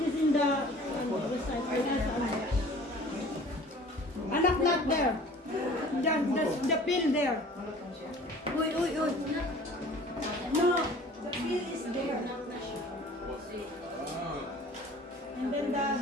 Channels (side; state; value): both; normal; correlation 0.47